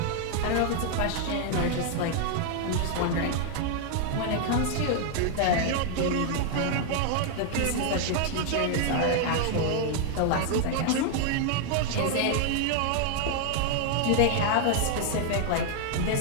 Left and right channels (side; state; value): both; different; correlation 0.00